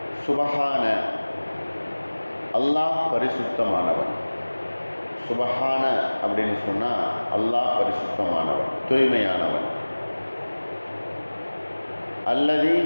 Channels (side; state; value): both; inverted; correlation -1.00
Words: சுபஹான, அல்லாஹ் பரிசுத்தமானவன். சுபஹான அப்படின்னு சொன்னால் அல்லாஹ் பரிசுத்தமானவன், தூய்மையானவன். அல்லதி